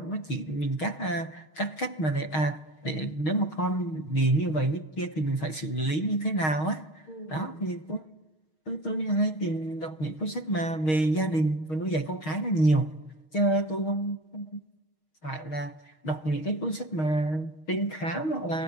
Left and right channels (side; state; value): right; late; 6.4 ms